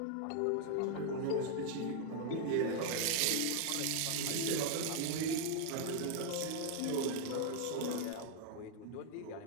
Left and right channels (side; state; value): both; different; correlation 0.00